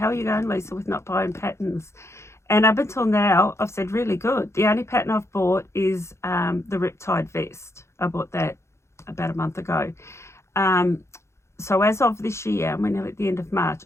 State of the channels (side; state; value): right; late; 0.13 ms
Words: are you going, Lisa, with not buying patterns? And up until now, I've said really good. The only pattern I've bought is the Riptide vest. I bought that about a month ago. So as of this year, and we're nearly at the end of March,